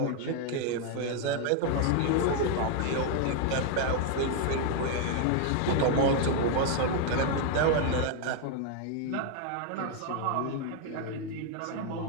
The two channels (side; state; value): both; different; correlation 0.00